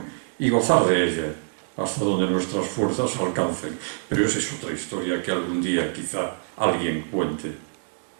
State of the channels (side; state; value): left; silent; 62 dB below the other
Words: y gozar de ella hasta donde nuestras fuerzas alcancen. Pero esa es otra historia que algún día quizá alguien cuente.